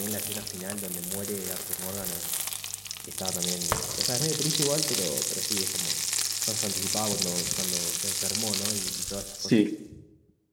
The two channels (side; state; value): both; identical; correlation 1.00